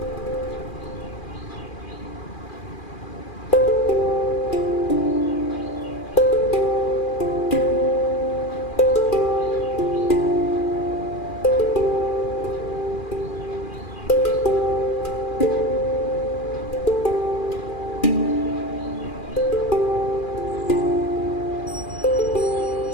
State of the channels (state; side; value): late; right; 2.4 ms